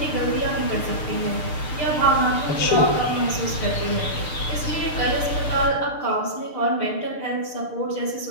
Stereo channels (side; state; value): right; late; 6.7 ms